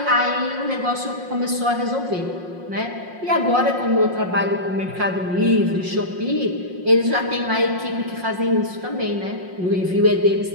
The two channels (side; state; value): left; late; 5.6 ms